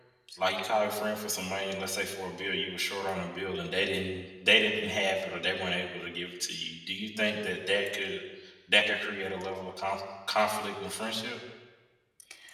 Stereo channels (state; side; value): identical; both; correlation 1.00